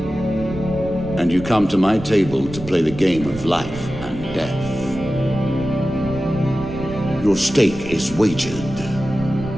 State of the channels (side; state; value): right; noise; rumble, 14 dB below the sound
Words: And you come to my table to play the game of life and death. Your stake is wagered.